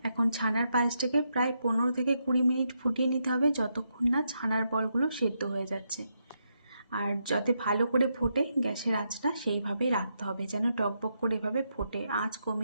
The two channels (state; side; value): inverted; both; correlation -0.82